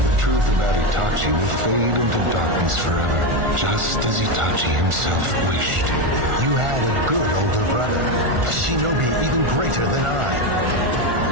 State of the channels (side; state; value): left; late; 1.4 ms